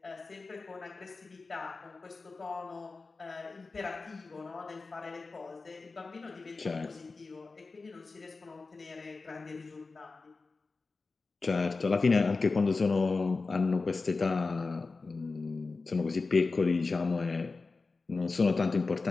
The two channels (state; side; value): quieter; right; 3.9 dB